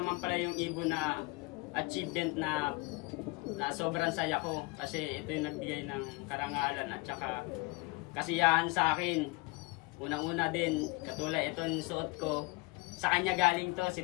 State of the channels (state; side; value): quieter; right; 24.6 dB